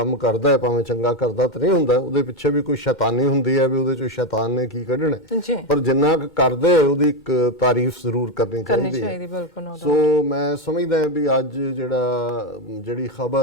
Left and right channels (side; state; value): both; normal; correlation 0.10